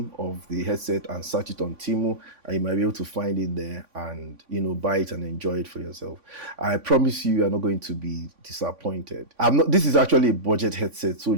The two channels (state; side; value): late; left; 3.5 ms